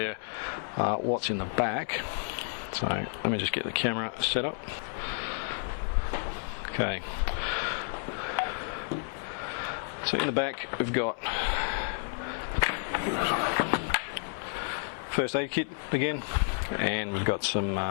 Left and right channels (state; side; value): silent; right; 57 dB below the other